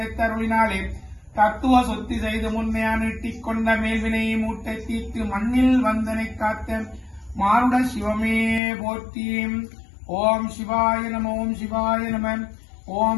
தத்துவ சொத்தி செய்து முன்னையா நீட்டிக் கொண்ட மேல்வினை மூட்டை தீர்த்து மண்ணில் வந்தனை காத்த மாருட சிவமே போற்றி. ஓம் சிவாய நம ஓம் சிவாய நம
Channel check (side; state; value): right; drops out; at 8.6 s